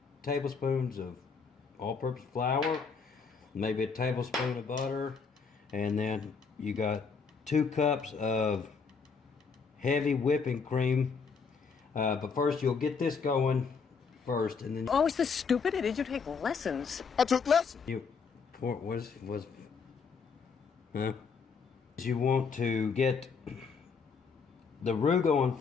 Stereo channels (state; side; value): quieter; right; 5.4 dB